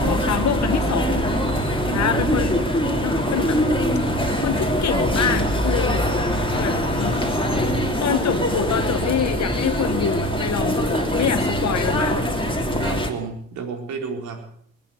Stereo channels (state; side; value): normal; both; correlation 0.38